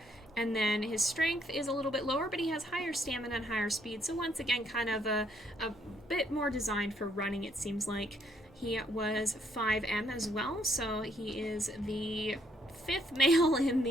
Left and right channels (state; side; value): normal; both; correlation 0.69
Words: And then his strength is a little bit lower, but he has higher stamina and higher speed. So once again, kind of a bit more designed for running, it seems like. He was 5M as well, so he is the 5th male in